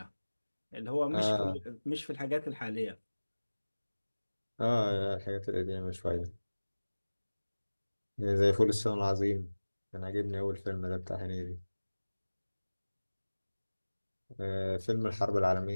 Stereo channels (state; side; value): inverted; both; correlation -1.00